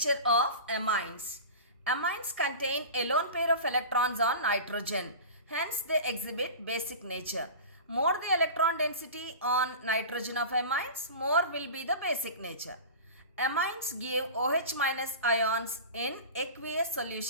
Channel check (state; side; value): inverted; both; correlation -0.32